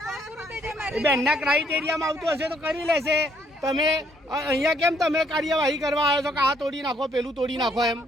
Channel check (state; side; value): normal; both; correlation 0.68